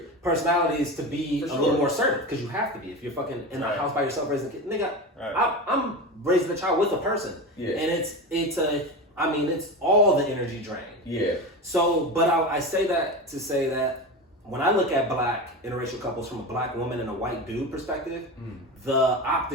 personalities to be a little more assertive, because you have to be if you're fucking in a house by yourself raising a kid. Nigga, I'm raising a child with a person, and it's all the energy drain. Yeah. So, but I say that to say that when I look at black interracial couples from a black woman and a white dude perspective, the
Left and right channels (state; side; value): normal; both; correlation 0.24